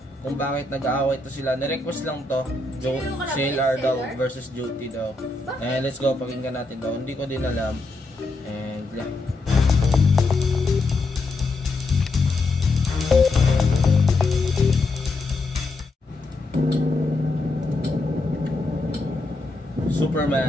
kung bakit nag-aaway to sila. Nirequest lang to. CLR daw versus Joti daw. And let's go, pakinggan natin daw. Hindi ko din alam. And yeah.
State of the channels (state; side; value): quieter; right; 3.1 dB